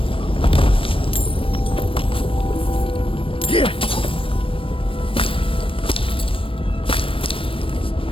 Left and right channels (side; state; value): right; late; 0.26 ms